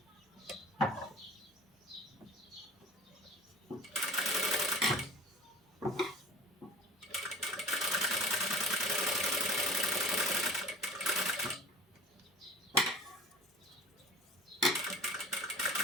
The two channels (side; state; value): both; normal; correlation 0.41